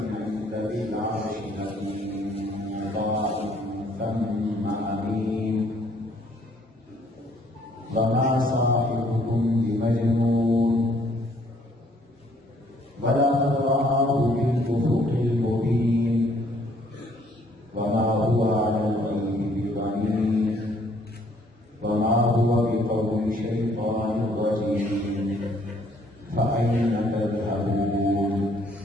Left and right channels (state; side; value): normal; both; correlation 0.63